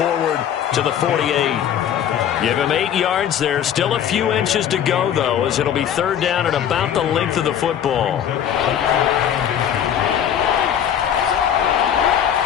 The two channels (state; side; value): quieter; right; 9.5 dB